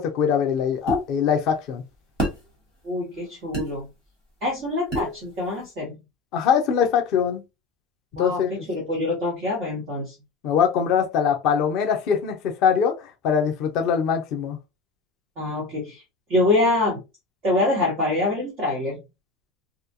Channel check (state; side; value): quieter; right; 4.6 dB